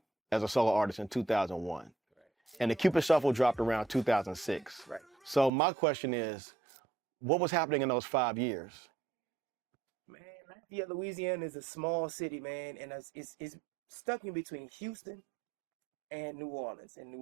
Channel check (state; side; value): drops out; left; at 5.5 s